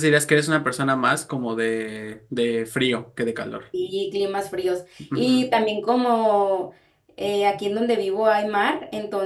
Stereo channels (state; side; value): identical; both; correlation 1.00